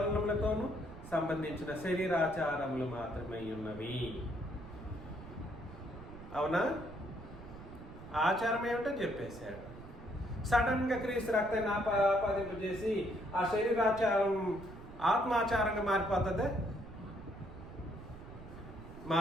సంబంధించిన శరీరాచారములు మాత్రమే ఉన్నవి. అవునా? ఆచారం ఏమిటో చెప్పేశాడు. సడన్ గా క్రీస్తు రక్తాన్ని ఆపాదింపజేసి ఆ శరీరాచారం ఆత్మాచారంగా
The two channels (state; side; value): noise; right; rumble, 14 dB below the sound